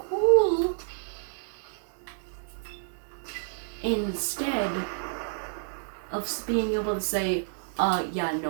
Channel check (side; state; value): left; silent; digital silence